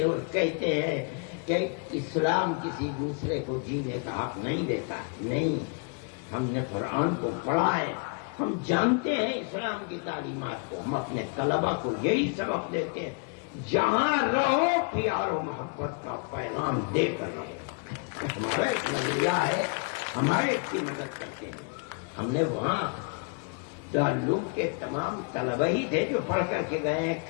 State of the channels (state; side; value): quieter; right; 39.7 dB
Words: اور کہتے ہیں کہ اسلام کسی دوسرے کو جینے کا حق نہیں دیتا۔ نہیں، ہم نے قرآن کو پڑھا ہے، ہم جانتے ہیں اسلام کی تعلیمات کو، ہم اپنے طلبا کو یہی سبق دیتے ہیں، جہاں رہو پیار و محبت کا پیغام دے کر رہو۔ ہمارا ایک نظریہ ہے، ہمارے کی مدد کرتے ہیں۔ ہم نے وہاں دارالعلوم کے تمام طلبہ ہی تھے جو پڑھ کر کے گئے ہیں،